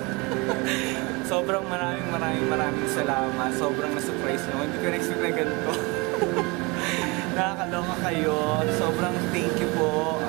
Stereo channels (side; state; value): left; quieter; 27.0 dB